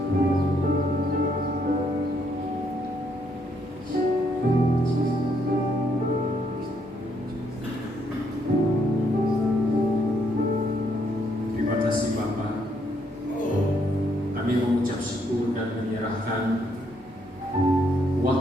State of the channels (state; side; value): noise; right; hum, 28 dB below the sound